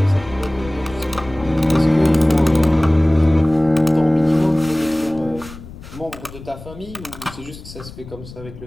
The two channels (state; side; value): noise; left; rumble, 16 dB below the sound